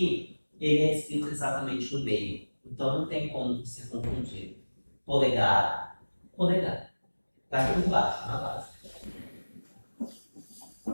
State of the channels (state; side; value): inverted; both; correlation -1.00